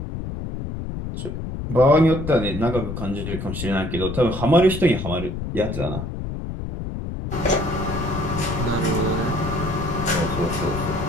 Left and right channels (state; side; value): noise; left; rumble, 6 dB below the sound